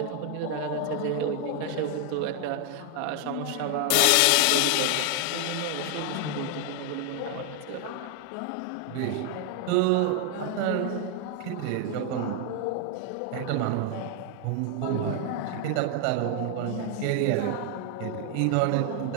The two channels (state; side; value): different; both; correlation 0.00